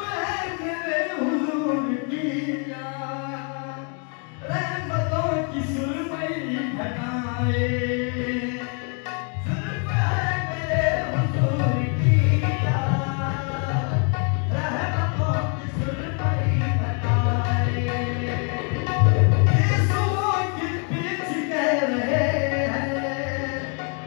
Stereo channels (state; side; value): quieter; right; 39.1 dB